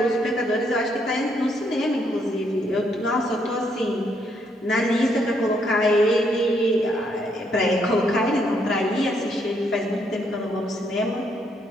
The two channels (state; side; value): normal; both; correlation 0.73